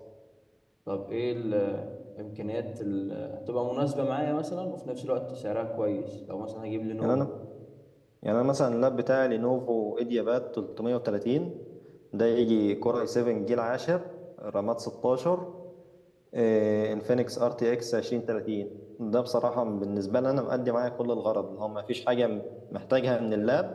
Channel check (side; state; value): both; identical; correlation 1.00